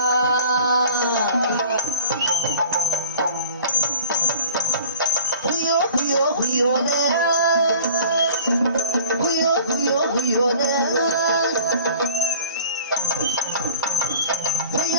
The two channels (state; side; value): inverted; both; correlation -0.46